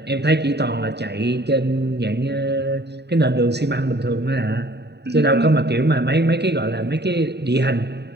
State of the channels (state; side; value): late; left; 0.49 ms